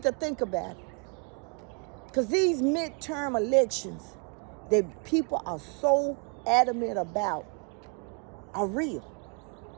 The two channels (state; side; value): quieter; left; 35.5 dB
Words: to think about it. Because these midterm elections that people are so adamant about are real.